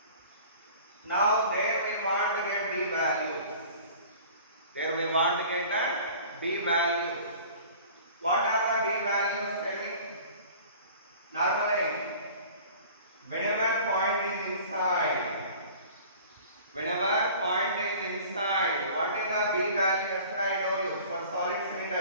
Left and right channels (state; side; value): inverted; both; correlation -0.45